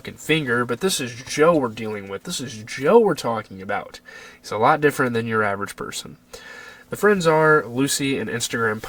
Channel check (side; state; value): both; identical; correlation 1.00